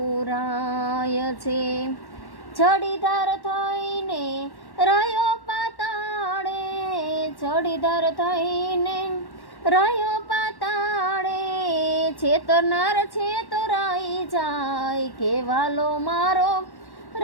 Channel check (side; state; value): right; late; 1.1 ms